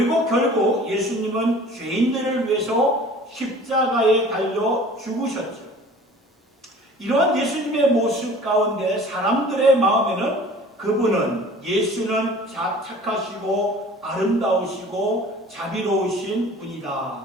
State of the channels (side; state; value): both; normal; correlation 0.46